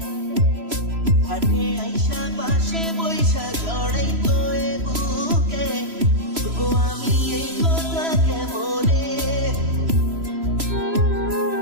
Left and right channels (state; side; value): late; left; 3.0 ms